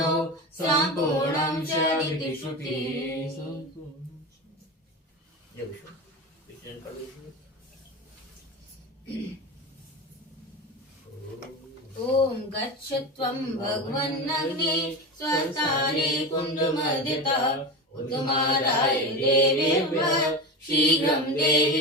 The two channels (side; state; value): both; normal; correlation 0.24